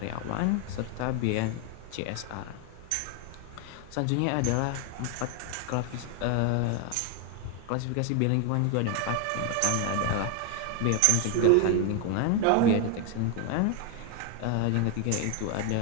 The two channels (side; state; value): both; different; correlation 0.01